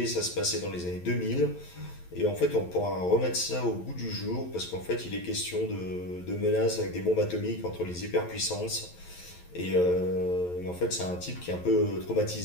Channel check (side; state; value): right; late; 11 ms